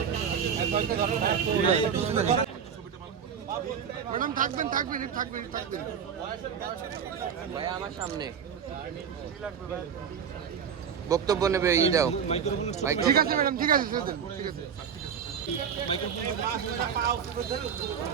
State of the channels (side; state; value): left; quieter; 7.4 dB